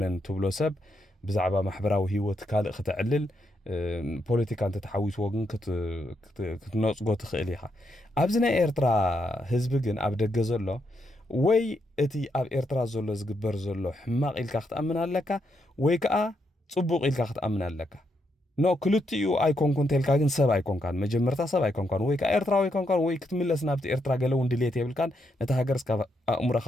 ትብሎ ሰብ ብዛዕባ ማሕበራዊ ህይወት ካልእ ክትዕልል ፖለቲካ እንተ ተሓዊስዎ ግን ክትነፅጎ ትኽእል ኢኻ ኣብዚ ናይ ኤርትራ ህዝቢ ግን ኣብ ደገ ዘሎ ወይ እቲ ኣብ ኤርትራ ዘሎ ዝግበር ዘሎ ሕማቕ ኢልካ ክትኣምን ኣለካ ወይ ከዓ ጽቡቕ ኢልካ ክትኣምን ኣለካ ኖ ክልቲኡ ኣይኮንኩን ተልካ ግን ሰብ ኣይኮንካን መጀመርታ ሰብ ኣይኮንካን ወይ ከዓ ኤርትራዊ ኣይኮንካን ወይ ክትምለስ ናብቲ ኤርትራ ገለ እውን ድሌት የብልካን ነቲ ሃገር እስካብ ኣእሙሮኻ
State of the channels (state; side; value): normal; both; correlation 0.79